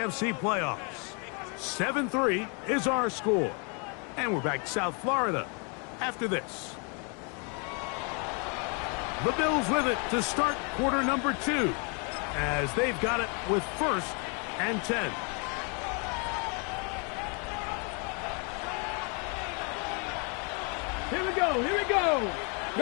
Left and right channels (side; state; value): right; quieter; 35.7 dB